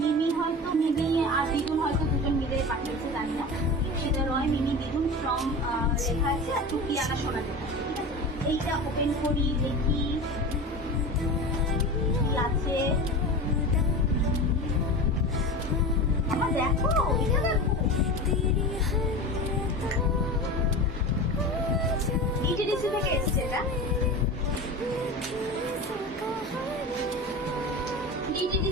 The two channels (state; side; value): normal; both; correlation 0.29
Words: আর দিদুন হয়তো দুজন মিলে পাঠিয়েছে, জানি না। ইপসিতা রয়, মিমি, দিদুন ফ্রম লেখা আছে, আর টুকিয়ানা সোনা লেখা আছে। এইটা ওপেন করি, দেখি কি আছে। আমার দেখো, এটা দেখো, ইটিডিসি থেকে এসছে। এটা